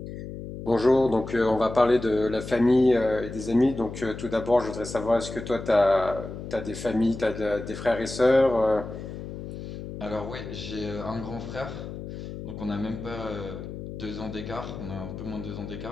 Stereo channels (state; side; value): noise; left; hum, 9 dB below the sound